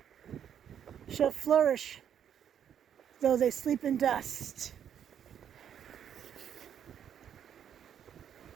shall flourish, though they sleep in dust.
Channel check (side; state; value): left; quieter; 9.0 dB